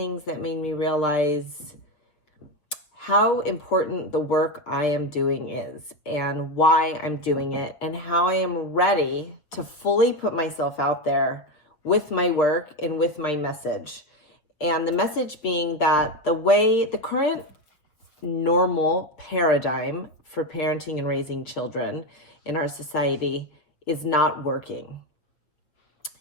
that made me realize how important the work I am doing is and why I'm doing it and how I am ready to fully put myself out there with my work and with my message. And the message being that the current normal paradigm for parenting and raising children in our society is not working.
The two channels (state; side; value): late; right; 6.4 ms